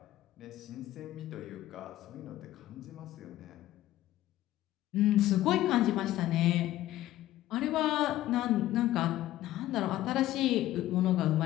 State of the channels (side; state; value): right; quieter; 14.6 dB